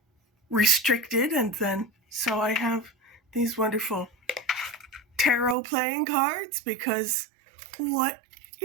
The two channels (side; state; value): left; drops out; at 5.6 s